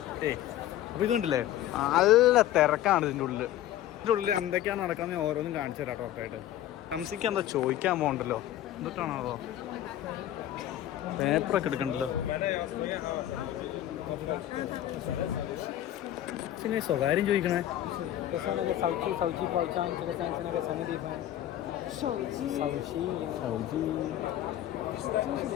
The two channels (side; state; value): right; quieter; 12.7 dB